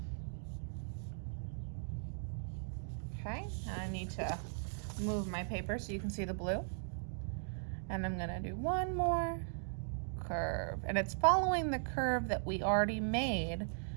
Okay, and I need to move my paper so you can see the blue. And I'm gonna do one more curve. And it's following the curve that we already made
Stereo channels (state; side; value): silent; left; digital silence